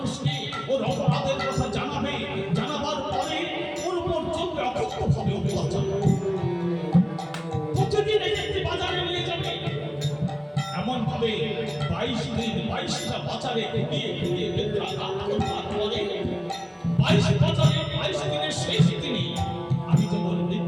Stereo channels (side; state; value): both; identical; correlation 1.00